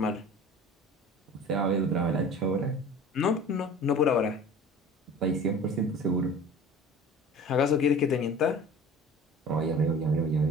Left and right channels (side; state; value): both; normal; correlation 0.41